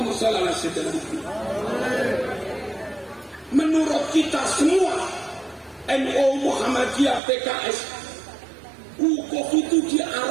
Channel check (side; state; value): left; drops out; at 7.2 s